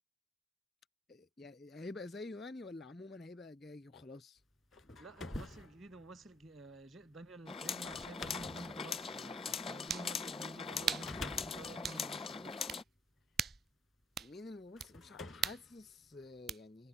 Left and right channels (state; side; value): normal; both; correlation 0.64